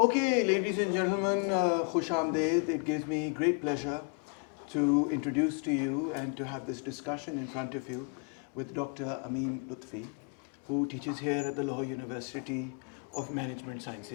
ladies and gentlemen, Khush Amdeed. It gives me great pleasure to introduce to you and to have this discussion in front of you with Dr. Ameem Lutfi, who teaches here at the Lahore University of Management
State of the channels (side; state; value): right; quieter; 37.0 dB